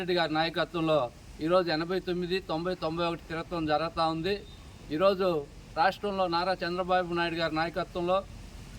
గారి నాయకత్వంలో ఈరోజు 89, 90, 91 తిరగటం జరుగుతూ ఉంది. ఈరోజు రాష్ట్రంలో నారా చంద్రబాబు నాయుడు గారి నాయకత్వంలో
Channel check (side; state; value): both; identical; correlation 1.00